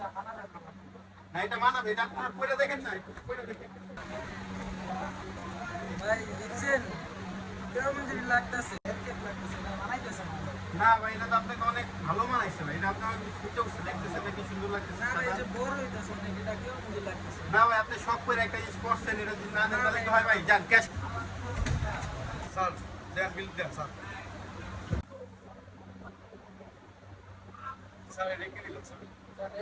মানাবে না। না, এটা মানাবে, এটা আপনার পরে দেখেন না, একটু পরে দেখেন। ভাই দেখছেন, কেমন জানি লাগতেছে, এরকম লাগতেছে, না মানাইতেছে না। না ভাই, এটা তো আপনাকে অনেক ভালো মানাইছে ভাই। এটা আপনার ফুটে উঠছে, দেখতেছেন নাকি সুন্দর লাগতেছে। না ভাই, এই যে বড় হইতেছে অনেক, এটা কেমন জানি লাগতেছে। না ভাই, আপনি শখ করে একটা জিনিস করছেন, এটা যদি না দেন তাহলে কি হয় ভাই? যান ক্যাশ। স্যার, দেন বিল দেন স্যার। স্যার, এটা কি দিলেন স্যার? স্যার,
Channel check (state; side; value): identical; both; correlation 1.00